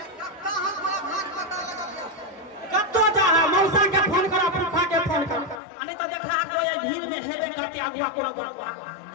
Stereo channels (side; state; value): right; drops out; at 5.6 s